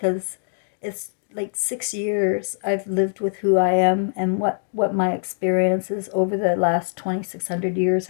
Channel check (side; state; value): right; silent; digital silence